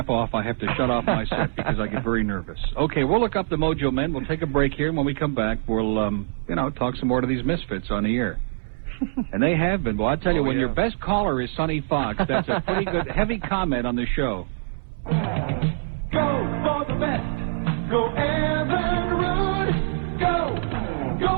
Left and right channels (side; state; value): left; silent; 61 dB below the other